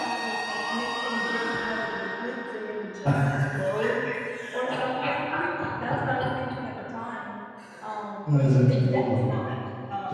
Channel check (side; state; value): both; identical; correlation 1.00